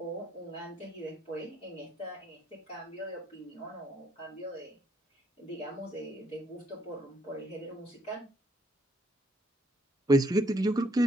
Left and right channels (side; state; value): both; normal; correlation 0.70